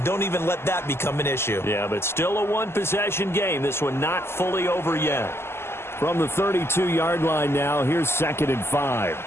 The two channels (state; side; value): late; right; 0.12 ms